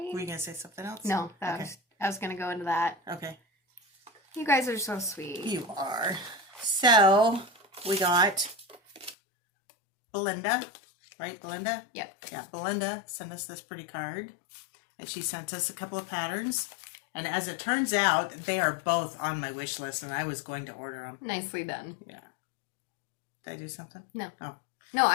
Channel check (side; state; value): right; drops out; at 9.2 s